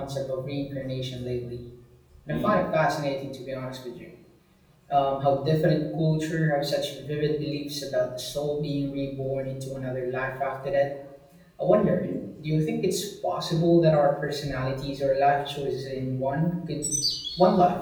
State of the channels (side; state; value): both; identical; correlation 1.00